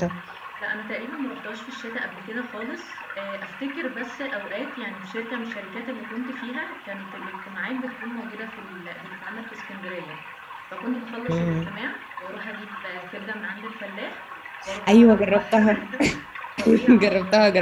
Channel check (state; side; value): identical; both; correlation 1.00